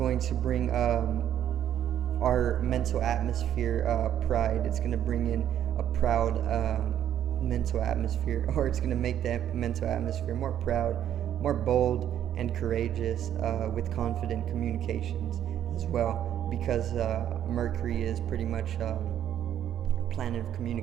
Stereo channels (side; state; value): left; quieter; 10.5 dB